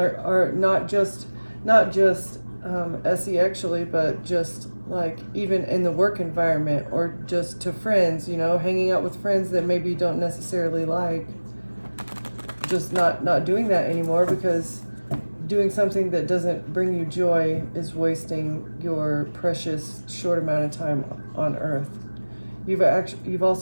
not just SE-actually, but just like even in the work environment, or just to friends, hanging out with friends that maybe you don't necessarily like, just not doing that anymore, because doing something that doesn't bring you joy is wasting your precious short amount of time on earth. You've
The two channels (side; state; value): both; inverted; correlation -1.00